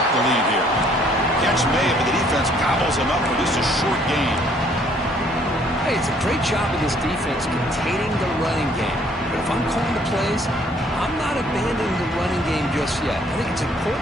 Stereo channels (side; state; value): both; normal; correlation 0.62